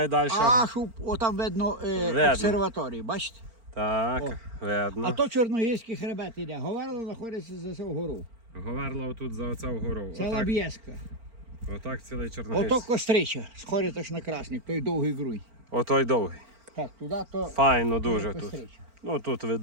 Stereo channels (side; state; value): left; late; 4.4 ms